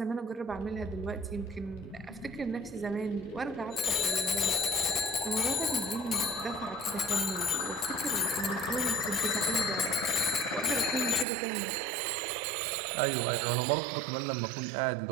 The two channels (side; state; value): left; drops out; at 11.2 s